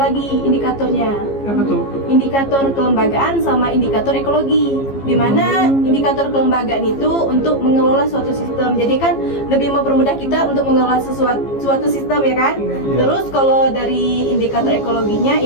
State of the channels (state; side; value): late; right; 15 ms